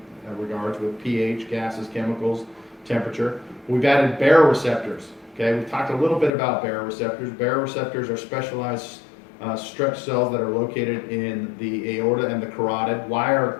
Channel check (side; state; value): right; drops out; at 6.3 s